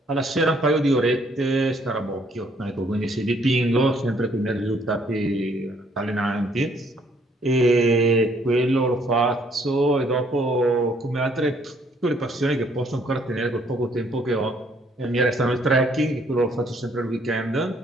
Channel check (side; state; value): both; normal; correlation 0.65